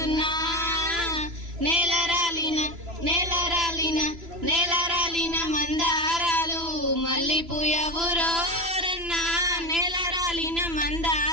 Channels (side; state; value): left; late; 3.0 ms